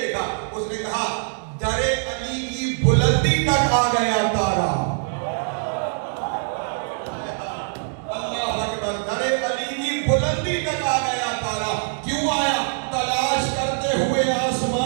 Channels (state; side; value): silent; left; digital silence